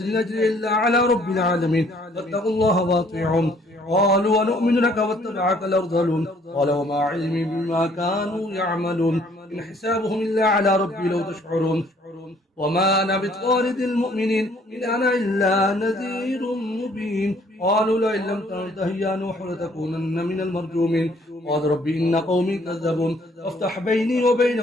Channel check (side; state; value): both; normal; correlation 0.61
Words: نجري إلا على رب العالمين فاتقوا الله واطيعون. قالوا ونؤمن لك واتبعك الأرذلون قال وما علمي بما كانوا يعملون إن حسابهم إلا على ربي لو تشعرون وما أنا بطارد المؤمنين إن أنا إلا نذير مبين. قالوا لئن لم تنته يا نوح لتكونن من المرجومين قال ربي إن قومي كذبون فافتح بيني